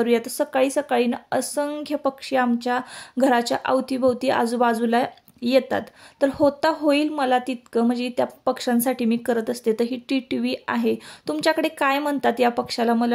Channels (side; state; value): both; identical; correlation 1.00